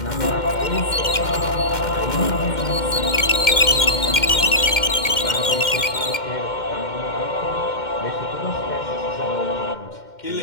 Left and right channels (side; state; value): right; late; 2.1 ms